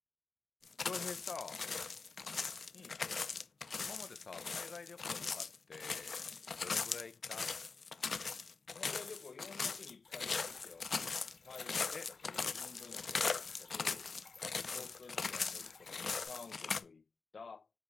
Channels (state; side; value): quieter; right; 4.6 dB